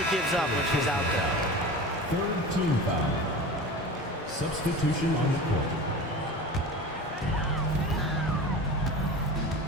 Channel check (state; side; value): normal; both; correlation 0.33